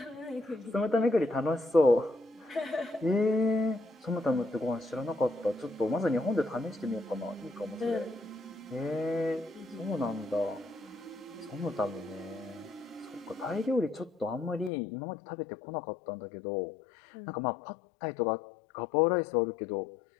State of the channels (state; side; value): drops out; right; at 14.7 s